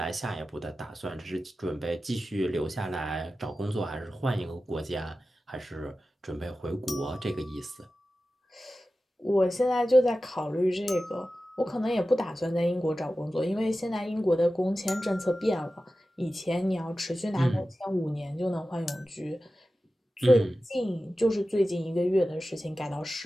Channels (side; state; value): both; normal; correlation 0.94